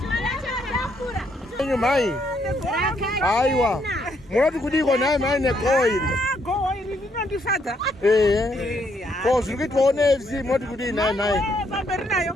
Enyu mai. Aiwa. Munoti kudiko naye mai negoho iri. Goho iri rinondifadza. Ko zviri kuitwawo neAFC munoti kudii naye mai. Pamberi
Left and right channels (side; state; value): both; normal; correlation 0.73